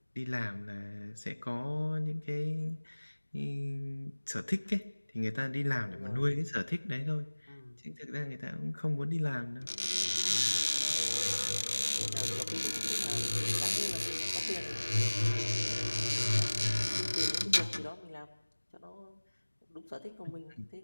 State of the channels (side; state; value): both; inverted; correlation -1.00